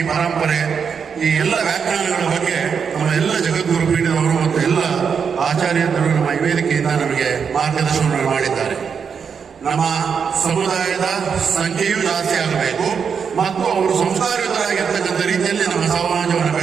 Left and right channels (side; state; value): left; quieter; 6.5 dB